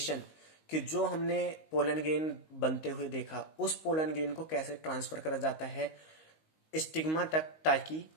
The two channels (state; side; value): late; right; 19 ms